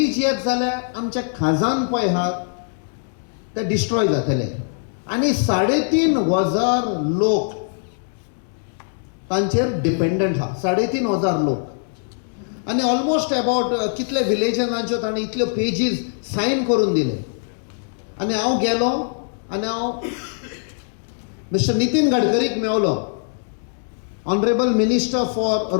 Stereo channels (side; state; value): right; silent; digital silence